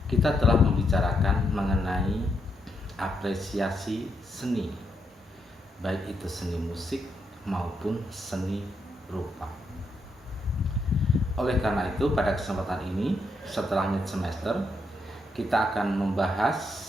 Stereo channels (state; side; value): normal; both; correlation 0.80